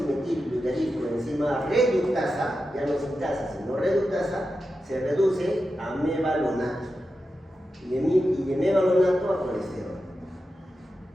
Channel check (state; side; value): normal; both; correlation 0.90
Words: reductasa, ya no sintasa, sino reductasa, se reduce a mevalonato. Y de mevalonato a colesterol.